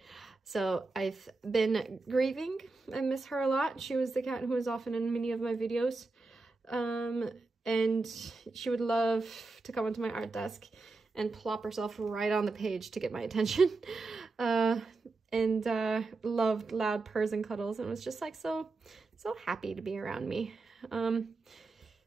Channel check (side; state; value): left; quieter; 3.6 dB